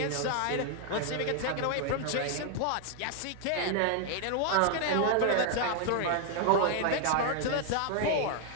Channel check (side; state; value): both; different; correlation 0.00